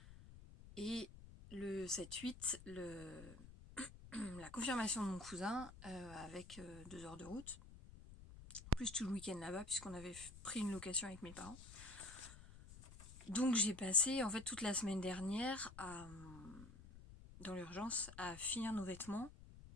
et le 7-8, la confirmation de mon cousin, avec 2 heures de route, plus tout le week-end là-bas, puisqu'on avait pris une location avec mes parents. Donc j'ai passé en fait toute la semaine dernière dans l'urgence à finir nos vêtements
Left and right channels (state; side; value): noise; left; rumble, 16 dB below the sound